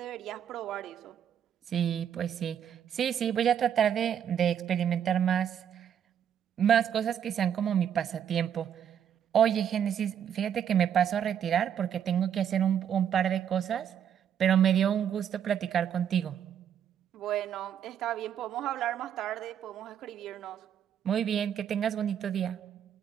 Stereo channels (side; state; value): left; quieter; 8.9 dB